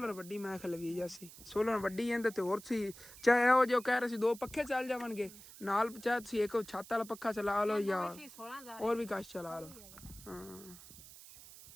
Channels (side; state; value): right; noise; hiss, 18 dB below the sound